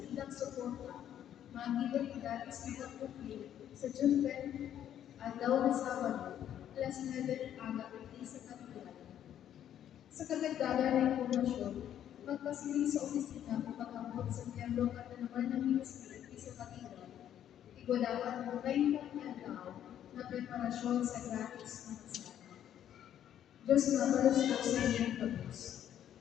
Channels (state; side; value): quieter; right; 10.5 dB